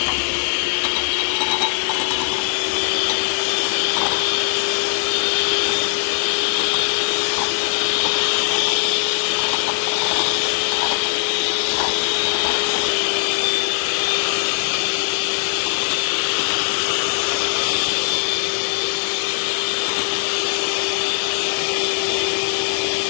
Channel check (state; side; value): silent; right; 66 dB below the other